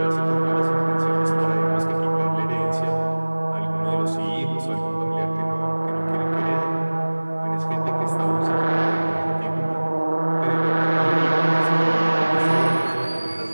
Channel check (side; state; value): both; inverted; correlation -1.00